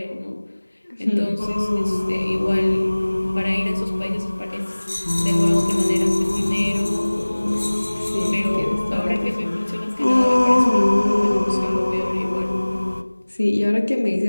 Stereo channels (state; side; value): inverted; both; correlation -1.00